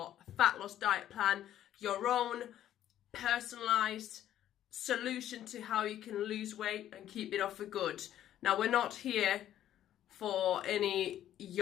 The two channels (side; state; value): right; quieter; 11.8 dB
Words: fat loss diet plan, your own personalized solution to how you can lose weight and keep it off for good. Now, we're not here for any